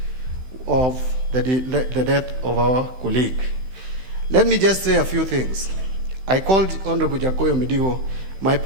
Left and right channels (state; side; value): late; left; 16 ms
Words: of the death of our colleague. Let me just say a few things. I called Honorable Jakoyo Mediwo my